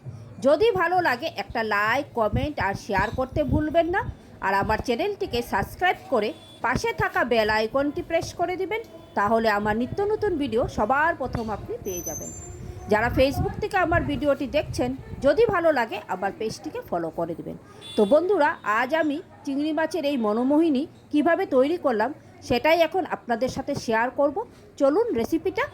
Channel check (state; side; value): identical; both; correlation 1.00